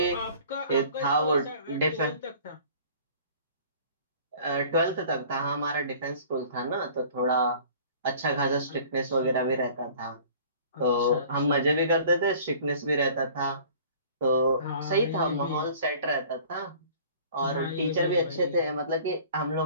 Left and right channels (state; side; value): inverted; both; correlation -0.49